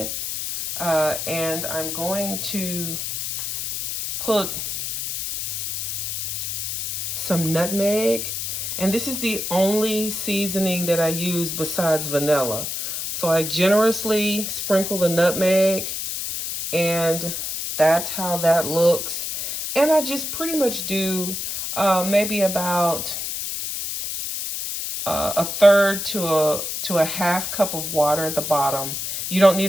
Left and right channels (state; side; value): noise; left; hiss, 4 dB below the sound